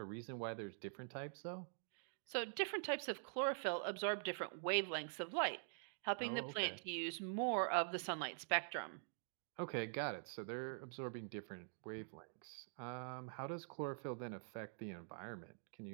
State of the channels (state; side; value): silent; left; digital silence